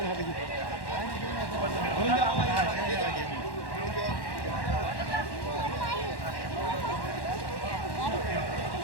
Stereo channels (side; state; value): right; late; 1.1 ms